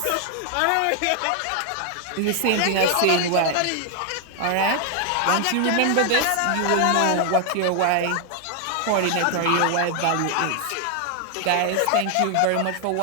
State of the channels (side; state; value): both; different; correlation 0.00